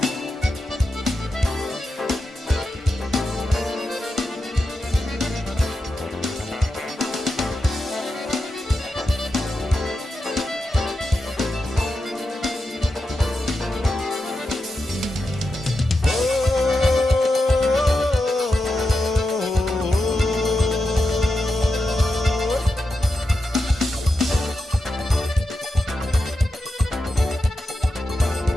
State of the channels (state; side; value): normal; both; correlation 0.88